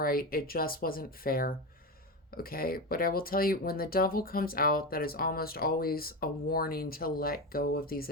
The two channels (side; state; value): both; normal; correlation 0.18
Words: it just wasn't fair, okay? But I will tell you, when the devil comes out, that is almost always a warning to let go of these